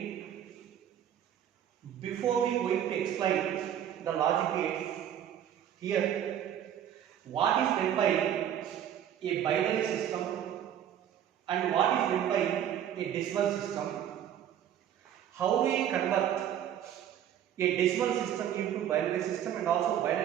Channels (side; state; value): left; quieter; 10.2 dB